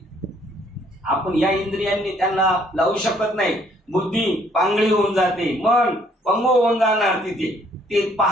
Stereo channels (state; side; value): normal; both; correlation 0.64